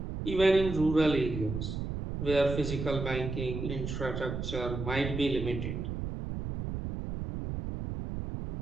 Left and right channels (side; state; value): right; noise; rumble, 5 dB below the sound